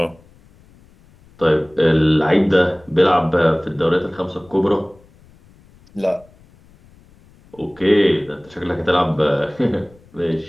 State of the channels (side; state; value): left; noise; rumble, 28 dB below the sound